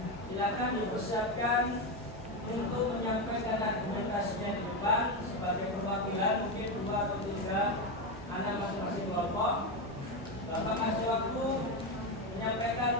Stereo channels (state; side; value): normal; both; correlation 0.12